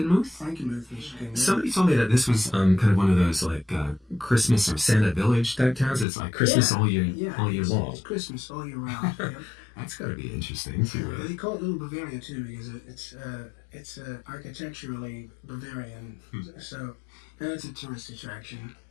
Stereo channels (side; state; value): right; drops out; at 6.1 s